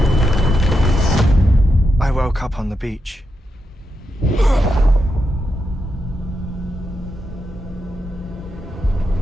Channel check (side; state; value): both; normal; correlation 0.85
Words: I woke up on the beach.